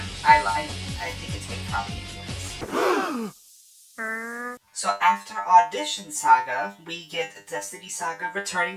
I think it's good comedy anyways. So after Audition Saga, we get Destiny Saga returning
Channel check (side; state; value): both; identical; correlation 1.00